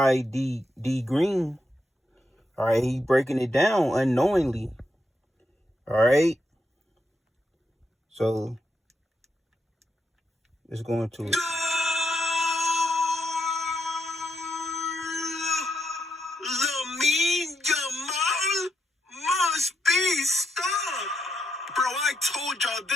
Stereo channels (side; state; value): both; normal; correlation 0.81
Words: D Green. All right, he breaking it down unknowingly. All right, so let's go into it. Lamine Yamal must be stopped. Bro, I told y'all